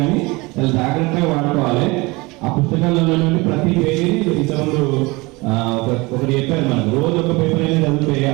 చాలా జాగ్రత్తగా వాడుకోవాలి. ఆ పుస్తకాలలో ప్రతి పేజీని ఇంతకుముందు ఒకటి చెప్పారు, మనకు రోజు ఒక పేపర్ అనేది చదివితే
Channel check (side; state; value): left; quieter; 24.1 dB